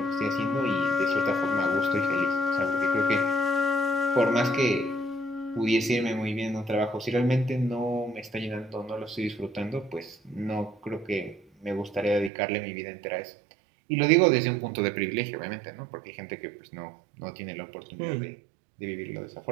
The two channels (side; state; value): left; drops out; at 12.3 s